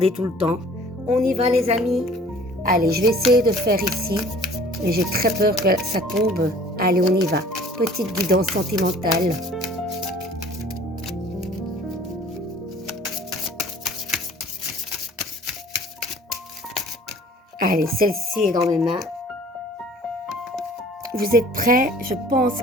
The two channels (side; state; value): both; normal; correlation 0.51